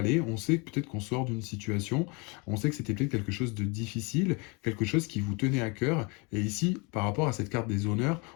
on sait peut-être qu'on sort d'une situation, on sait que c'était peut-être quelque chose de difficile, quelque chose qui vous tenait à cœur, et ici, par rapport à cette carte des honneurs,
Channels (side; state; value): right; quieter; 29.5 dB